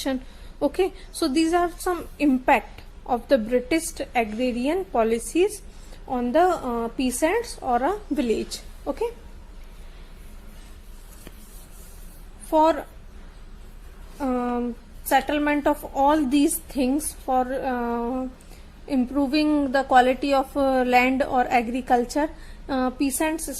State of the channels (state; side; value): identical; both; correlation 1.00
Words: Okay, so these are some impact of the British agrarian policies on the peasants or a village. Okay, for settlement of all these things, for improving the quality of land or agriculture, peasants